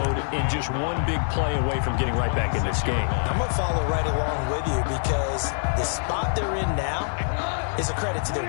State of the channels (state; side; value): silent; right; 62 dB below the other